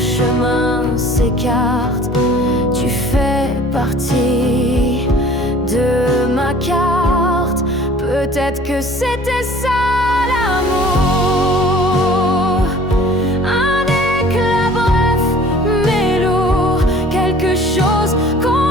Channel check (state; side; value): normal; both; correlation 0.49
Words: s'écartent, tu fais partie de ma carte. Peut-être que c'était ça l'amour. Un éclat bref mais lourd, quelque chose